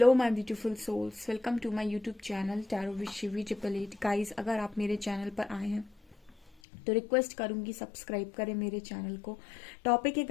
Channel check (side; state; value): right; drops out; at 6.6 s